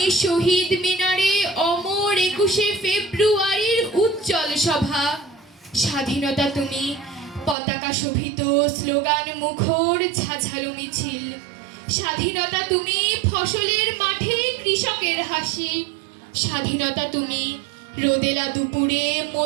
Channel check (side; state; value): left; drops out; at 7.6 s